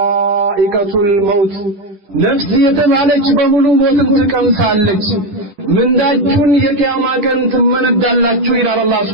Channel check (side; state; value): left; late; 10 ms